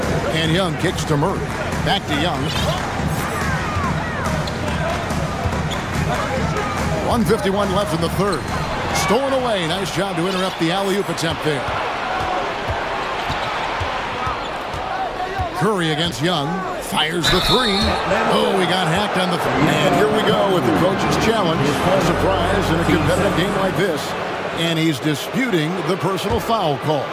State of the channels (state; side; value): identical; both; correlation 1.00